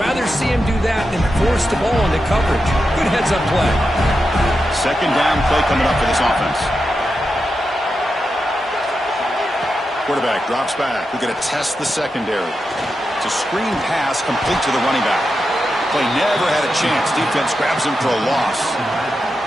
see him do that than force the ball into coverage. Good heads-up play. Second down play coming up for this offense. Quarterback drops back. We're going to test the secondary. It's a screen pass complete to the running back. Play never had a chance. Defense grabs him for a loss.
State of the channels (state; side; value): normal; both; correlation 0.88